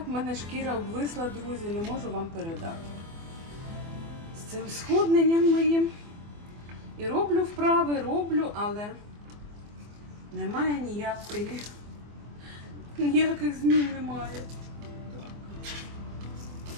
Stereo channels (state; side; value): late; left; 24 ms